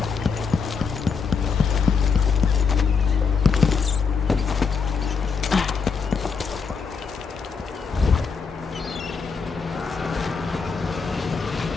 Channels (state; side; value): quieter; right; 5.5 dB